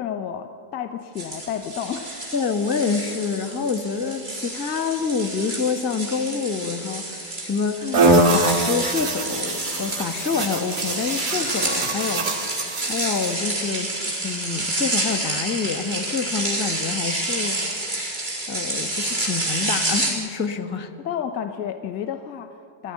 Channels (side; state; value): left; late; 2.3 ms